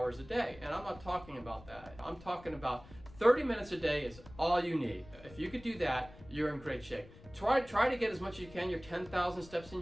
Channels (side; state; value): left; noise; rumble, 20 dB below the sound